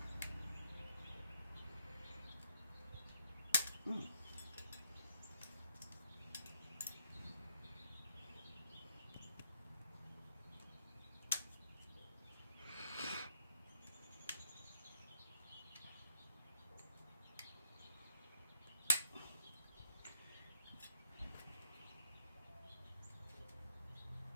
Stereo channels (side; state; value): both; inverted; correlation -0.74